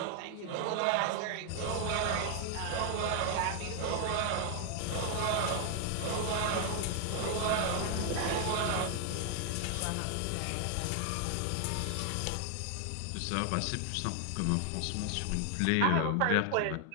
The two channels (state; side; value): different; both; correlation 0.00